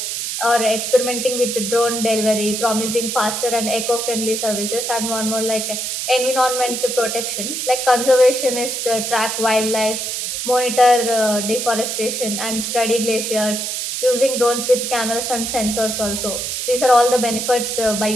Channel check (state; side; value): noise; right; hiss, 3 dB below the sound